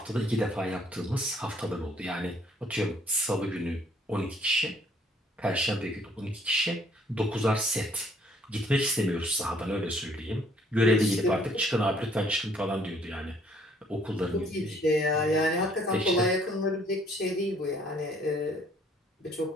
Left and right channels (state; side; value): normal; both; correlation 0.62